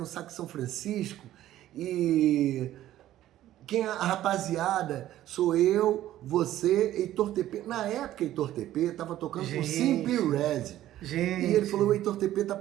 Saco São Francisco e a rapaziada sou eu, você, Heitor TP. Na época, Heitor TP tava tocando com Simple Red. Gente. E ele falou, o Heitor TP tá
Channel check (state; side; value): quieter; left; 13.4 dB